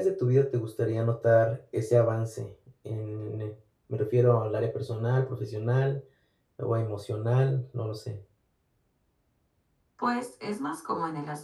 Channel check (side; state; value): both; identical; correlation 1.00